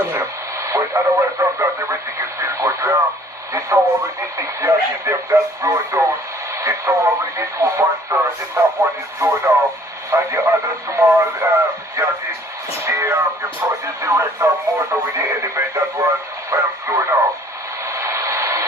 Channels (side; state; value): both; normal; correlation 0.56